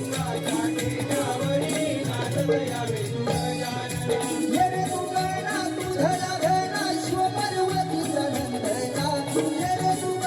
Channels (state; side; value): identical; both; correlation 1.00